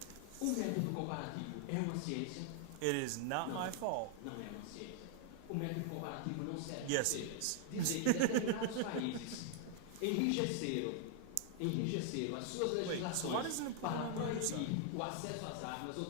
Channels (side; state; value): both; different; correlation 0.00